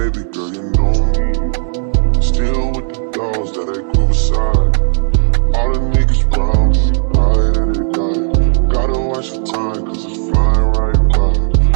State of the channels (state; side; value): silent; left; digital silence